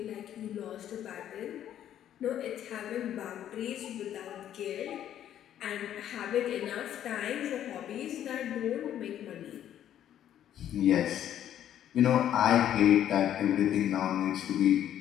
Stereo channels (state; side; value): quieter; right; 10.8 dB